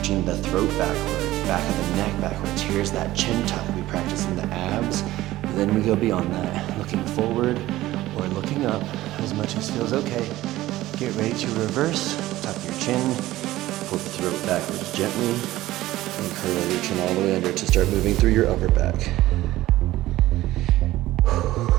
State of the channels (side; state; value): left; quieter; 16.1 dB